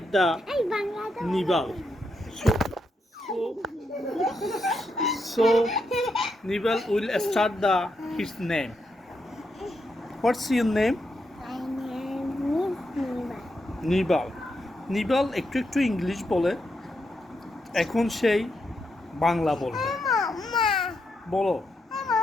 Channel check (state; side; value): normal; both; correlation 0.82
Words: the Nibal. So Nibal will start his name. What's your name? My name is Niva. নিবাল নিবাল একটু একটু English বলে এখন সেই বাংলা বলবে Mama. বলো